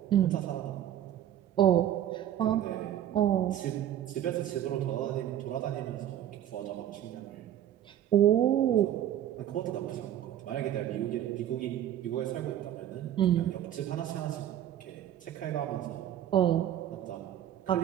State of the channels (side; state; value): left; quieter; 11.3 dB